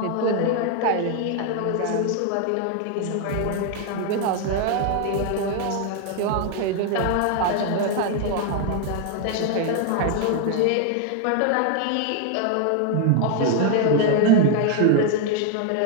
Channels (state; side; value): different; both; correlation 0.00